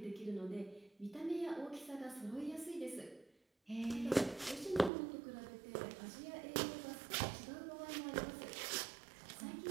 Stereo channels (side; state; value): left; drops out; at 4.9 s